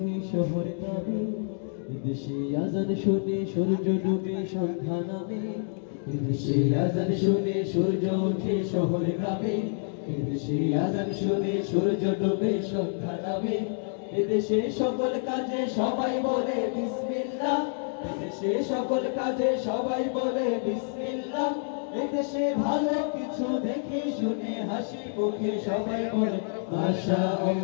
শহরে নামে, এদেশে আজান শুনে সূর্য ডুবে সন্ধ্যা নামে। এদেশে আজান শুনে সূর্য ওঠে শহরে গ্রামে, এদেশে আজান শুনে সূর্য ডুবে সন্ধ্যা নামে। এদেশে সকল কাজে সবাই বলে বিসমিল্লাহ, এদেশে সকল কাজে সবাই বলে বিসমিল্লাহ। এদেশে ভালো কিছু দেখে শুনে হাসি মুখে সবাই বলে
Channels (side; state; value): right; silent; digital silence